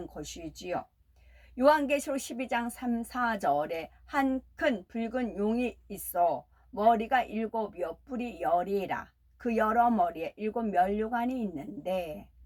것이지요. 요한계시록 12장 3, 4절에 한 큰 붉은 용이 있어 머리가 7이요 뿔이 10이라. 그 여러 머리에 7면류관이 있는데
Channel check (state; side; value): identical; both; correlation 1.00